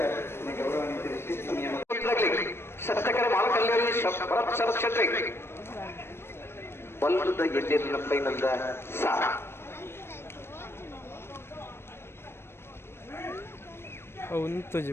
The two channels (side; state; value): right; late; 0.12 ms